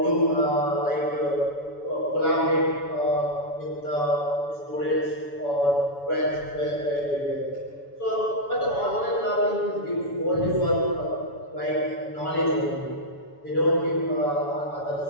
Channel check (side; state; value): right; late; 7.0 ms